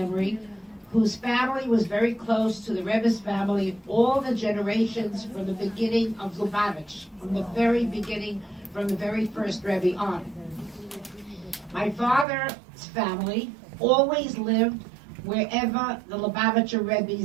whose family was very close to the Rebbe's family, all the generations from the beginning of Lubavitch, from the very beginning, from the very first Rebbe on. My father's family always lived wherever the Lubavitcher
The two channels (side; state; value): left; drops out; at 12.2 s